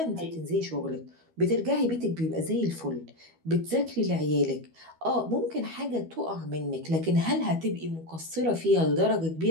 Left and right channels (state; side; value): late; left; 12 ms